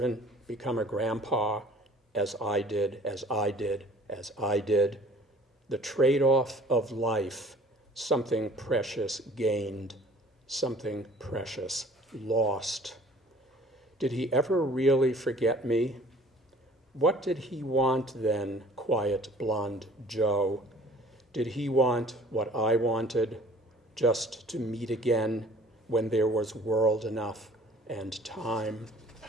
become a grandpa, as I did, as I did, as I did? The trade-off of life, something precious gained, something precious lost. Did he ever really forget me? What did he want then, quiet blonde Joe? Did he want what I wanted, just to meet again when there was world enough and time?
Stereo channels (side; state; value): both; normal; correlation 0.51